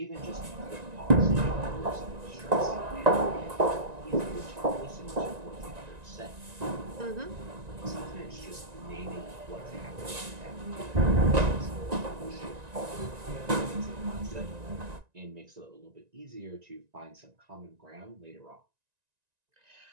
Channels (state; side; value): late; left; 1.9 ms